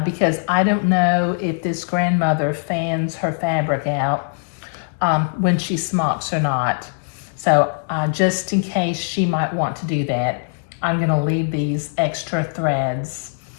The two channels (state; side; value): silent; right; digital silence